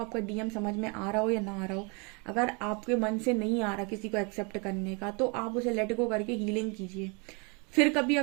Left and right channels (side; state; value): left; quieter; 32.2 dB